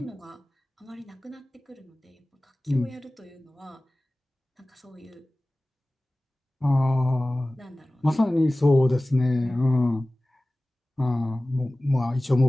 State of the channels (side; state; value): both; normal; correlation 0.97